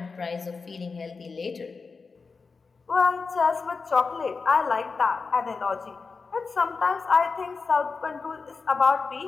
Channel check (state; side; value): quieter; right; 4.6 dB